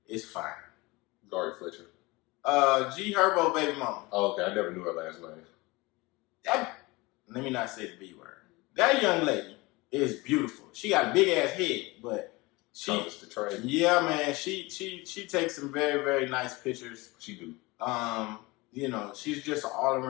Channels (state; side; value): quieter; right; 23.2 dB